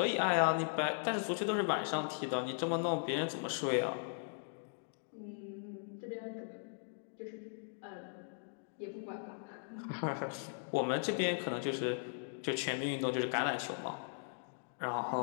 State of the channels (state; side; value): silent; right; digital silence